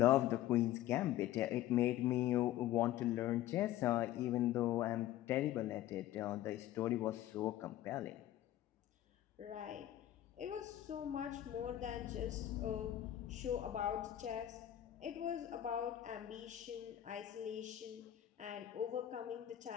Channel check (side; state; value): right; quieter; 13.1 dB